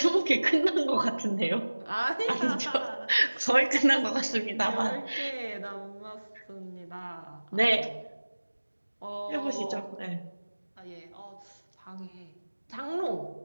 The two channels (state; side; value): inverted; both; correlation -1.00